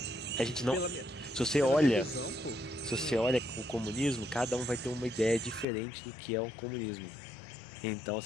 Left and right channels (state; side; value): drops out; right; at 5.7 s